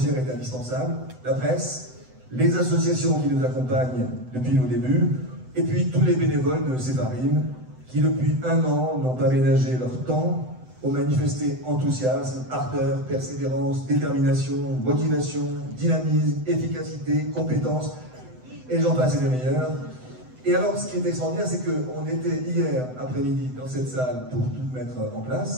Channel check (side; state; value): left; late; 7.9 ms